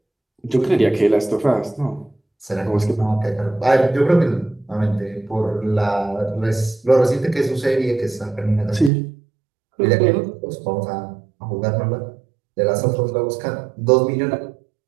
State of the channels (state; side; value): drops out; left; at 8.9 s